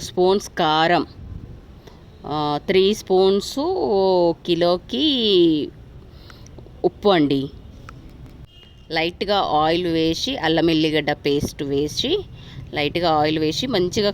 స్పూన్స్ కారం, 3 స్పూన్స్ కిలోకి ఉప్పు అండి. లైట్గా ఆయిల్ వేసి అల్లం ఎల్లిగడ్డ పేస్ట్ వేసి లైట్గా ఆయిల్ వేసి మంచిగా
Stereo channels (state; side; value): identical; both; correlation 1.00